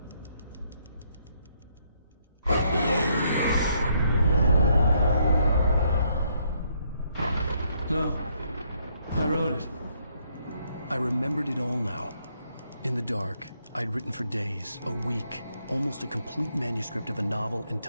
No. I wrote it. I remembered it all now. In the dark, I'd written for days, a week, almost a complete manuscript of a novel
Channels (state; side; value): inverted; both; correlation -0.72